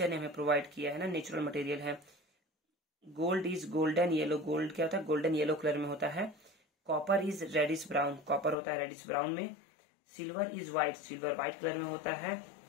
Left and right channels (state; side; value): drops out; right; at 8.6 s